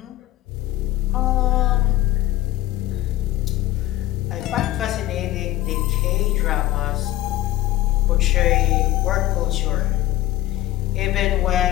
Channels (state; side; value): quieter; right; 14.6 dB